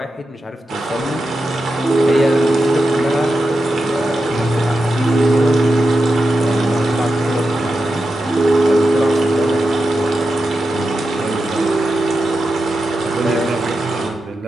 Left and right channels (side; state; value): both; normal; correlation 0.89